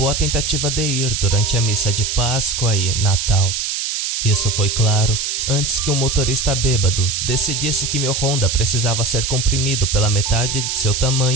tentativa de ir durante a missa de Páscoa e Natal. Isso foi claro antes que um motorista bêbado decidisse que meu Honda precisava ser comprimido pela metade de seu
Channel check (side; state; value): right; noise; hiss, 2 dB below the sound